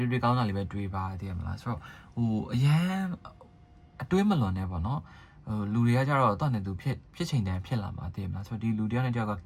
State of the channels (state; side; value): identical; both; correlation 1.00